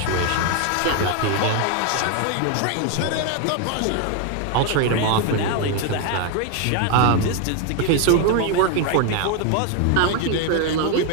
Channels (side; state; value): both; different; correlation 0.01